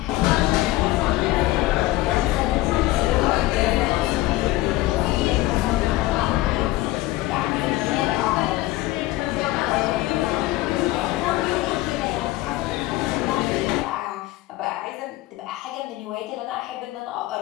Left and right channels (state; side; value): quieter; right; 17.6 dB